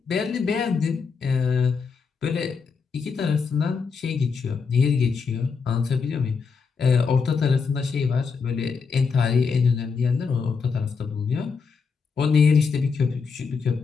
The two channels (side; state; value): right; quieter; 5.3 dB